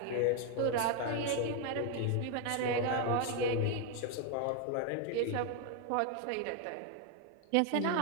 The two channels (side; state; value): both; different; correlation 0.01